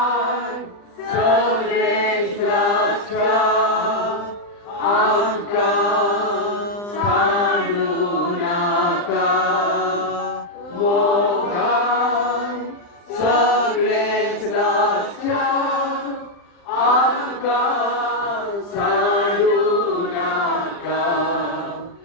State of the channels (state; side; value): late; right; 40 ms